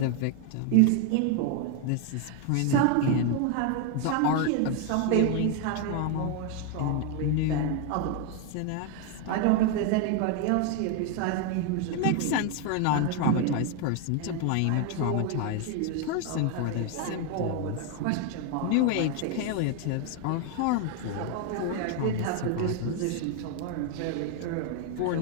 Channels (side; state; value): both; different; correlation 0.01